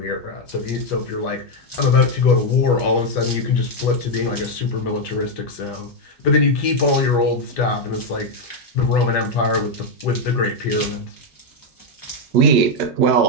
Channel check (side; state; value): both; normal; correlation 0.02